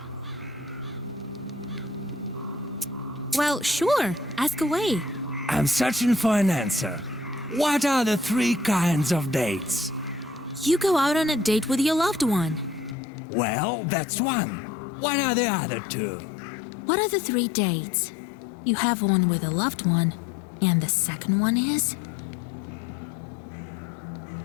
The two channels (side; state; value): right; drops out; at 13.0 s